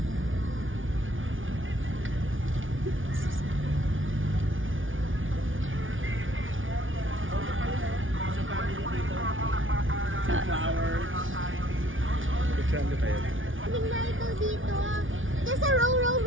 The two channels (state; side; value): late; left; 0.57 ms